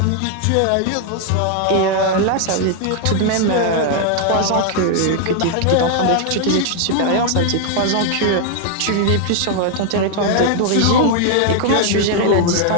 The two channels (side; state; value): both; different; correlation 0.00